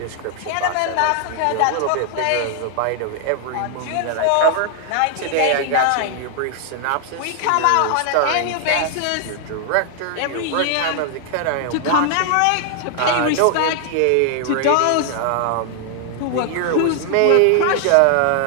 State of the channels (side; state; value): both; different; correlation 0.00